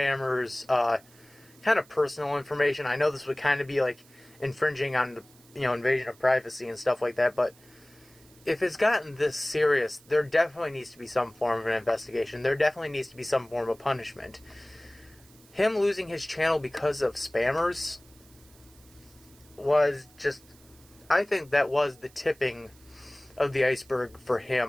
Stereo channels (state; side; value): noise; right; hiss, 27 dB below the sound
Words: kind of personal information. I know this would kind of be like infringing on the, invasion of privacy and stuff like that, but if it's gotten this serious, there definitely needs to be some form of an investigation. There definitely needs to be some form of punishment. Him losing his channel because of spammers was just, I think that was the tipping of the iceberg for